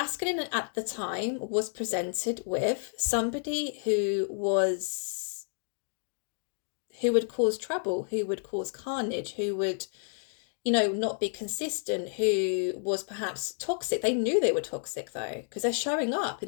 at the time was presented with somebody who would cause trouble, who would cause carnage, who would, you know, not be consistent, who was perhaps toxic. They knew they were toxic though, because they're showing up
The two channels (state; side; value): silent; right; 58 dB below the other